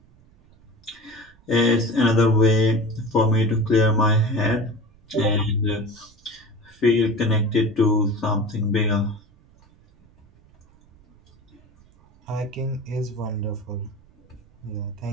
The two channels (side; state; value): right; noise; rumble, 29 dB below the sound